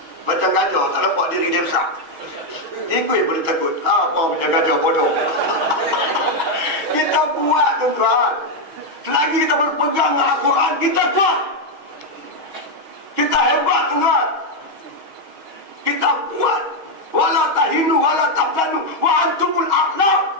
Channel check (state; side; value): late; left; 6.4 ms